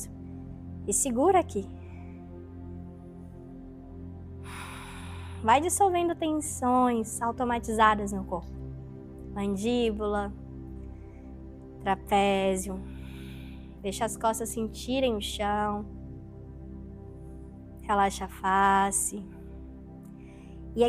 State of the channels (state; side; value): identical; both; correlation 1.00